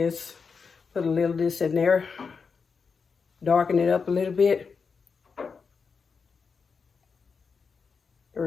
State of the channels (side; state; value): right; quieter; 5.4 dB